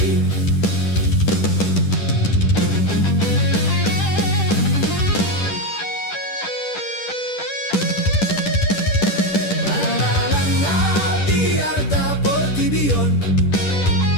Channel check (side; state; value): right; late; 10 ms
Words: di arta portibion